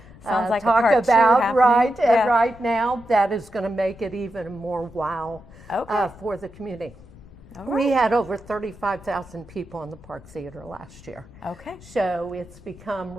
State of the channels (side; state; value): left; noise; rumble, 20 dB below the sound